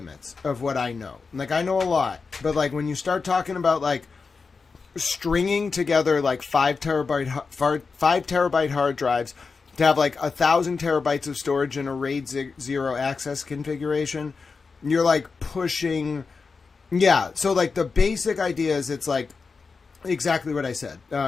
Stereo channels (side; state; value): right; quieter; 4.7 dB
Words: of what I know. Like, I know a lot, but like when you start talking about like stringing together like 5 terabyte hard drives to have like 1,000 terabytes of storage in a RAID 0 access configuration, you're like pushing. Yeah. So like the basic idea is it's like exactly what I said.